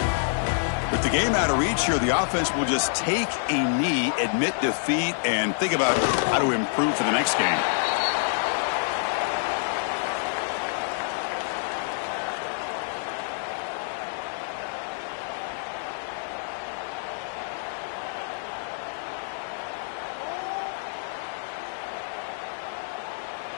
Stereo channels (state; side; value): silent; right; digital silence